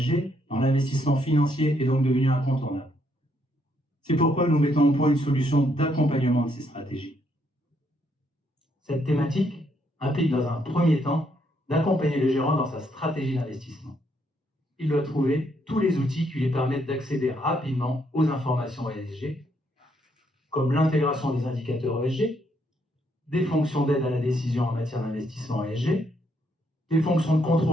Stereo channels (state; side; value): normal; both; correlation 0.73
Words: dans l'investissement financier est donc devenue incontournable. C'est pourquoi nous mettons au point une solution d'accompagnement de ces stratégies. Cette thématique implique dans un premier temps d'accompagner le gérant dans sa stratégie d'investissement. Il doit trouver tous les outils qui lui permettent d'accéder rapidement aux informations ESG, comme l'intégration des indicateurs ESG, des fonctions d'aide à la décision en matière d'investissement ESG, des fonctions de